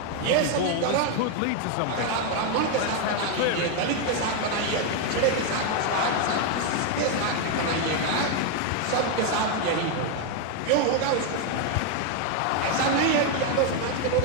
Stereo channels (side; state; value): both; different; correlation 0.01